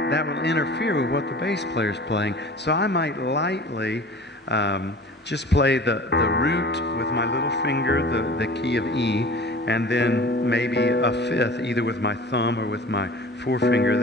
will interfere with what the bass player's playing. So I might lightly just play the root with my little finger, the key of E, and then maybe a fifth, either with my thumb or with my forefinger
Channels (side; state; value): both; normal; correlation 0.41